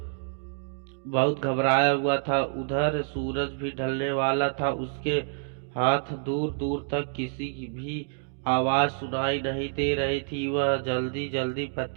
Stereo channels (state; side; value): silent; left; digital silence